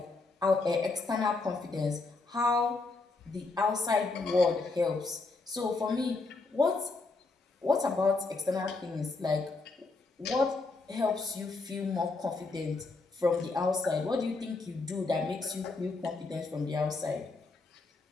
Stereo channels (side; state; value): right; quieter; 3.6 dB